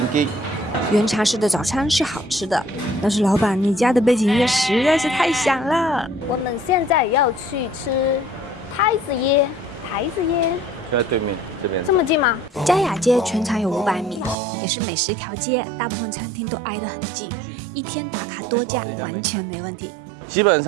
原茶室的早餐是好吃的，但是老板，你家的背景音乐实在是太响了。我们现在要去吃太子椰牌子耶，就在对面这边。这么近吗？嘉雅街全长有500米，也是美食一条街，大部分餐厅都挨得很近，一天打卡多家完全没问题。基本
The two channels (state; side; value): drops out; left; at 14.4 s